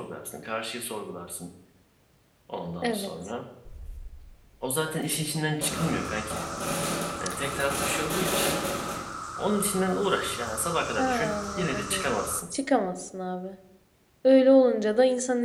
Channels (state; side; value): identical; both; correlation 1.00